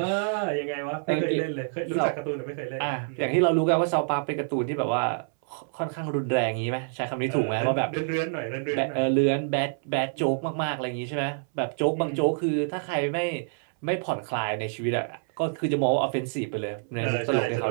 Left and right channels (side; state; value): left; silent; 60 dB below the other